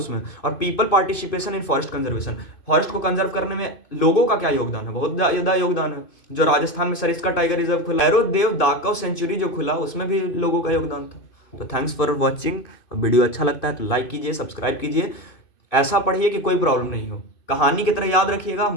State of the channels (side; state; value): right; late; 2.5 ms